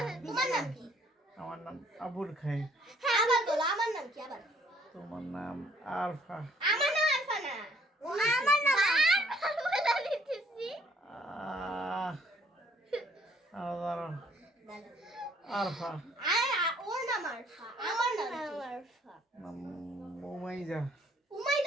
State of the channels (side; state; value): both; normal; correlation 0.63